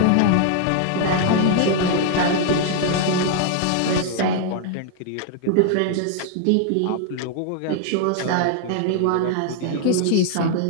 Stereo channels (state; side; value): different; both; correlation 0.00